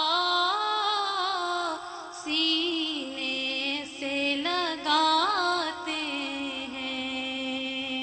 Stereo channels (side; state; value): both; identical; correlation 1.00